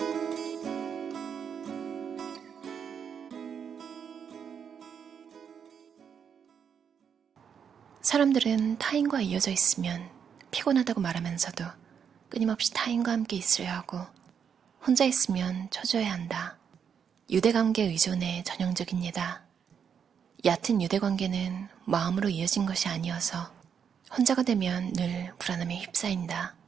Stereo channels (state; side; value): quieter; left; 7.4 dB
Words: 사람들은 타인과 이어져 있으면 피곤하다고 말하면서도 끊임없이 타인과 함께 있어야 하고 혼자 있으면 초조해야 한다. 유대관계 의존의 전형적인 예다. 얕은 유대관계는 마음으로 이어진 것이 아니어서 혼자가 되면 늘 불안함에 휩싸인다.